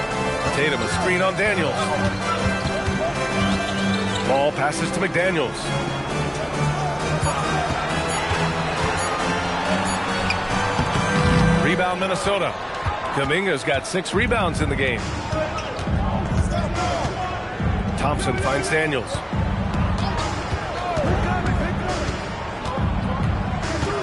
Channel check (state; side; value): identical; both; correlation 1.00